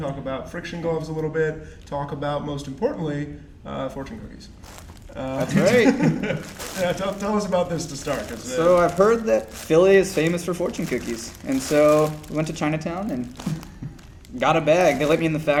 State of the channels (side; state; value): both; identical; correlation 1.00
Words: about friction gloves a little bit, talk about, most importantly, fortune cookies. That's right. Yeah, tell us about this to start. So I've heard that Philly is famous for fortune cookies, and so we went to Chinatown and got a bag. They let me in the